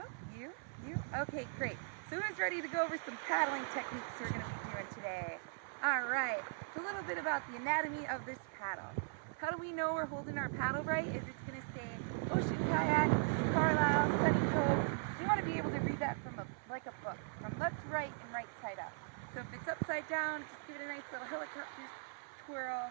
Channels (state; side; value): silent; left; 52 dB below the other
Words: you? Okay, great. So who's ready to go over some paddling techniques we're going to be doing today? Alright, so a little bit about the anatomy of this paddle. How do we know we're holding our paddle right? Is it's going to say Ocean Kayak, Carlisle, Sunny Coast. You want to be able to read that from like a book, from left to right and right side up. So if it's upside down, just give it a nice little helicopter twirl